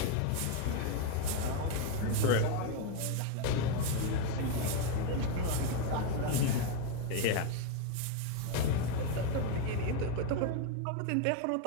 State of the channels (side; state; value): both; different; correlation 0.02